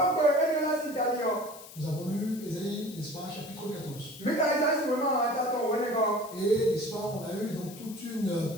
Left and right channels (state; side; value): noise; left; hiss, 17 dB below the sound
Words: nous avons lu Ésaïe, n'est-ce pas, chapitre 14. Et, n'est-ce pas, on a eu donc toute une